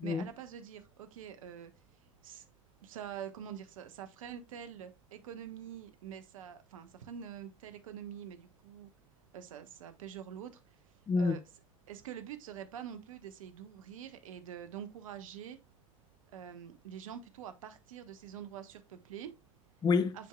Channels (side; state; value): right; noise; hum, 29 dB below the sound